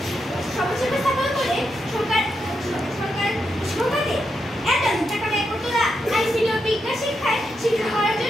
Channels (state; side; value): normal; both; correlation 0.84